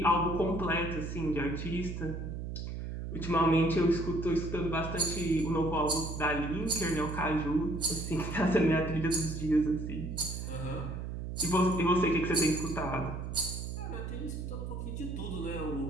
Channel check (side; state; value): right; noise; hum, 6 dB below the sound